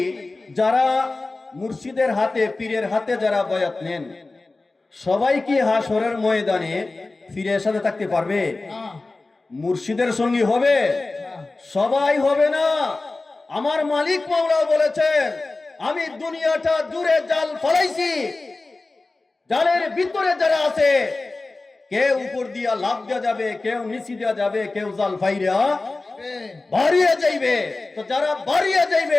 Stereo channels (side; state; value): right; quieter; 3.3 dB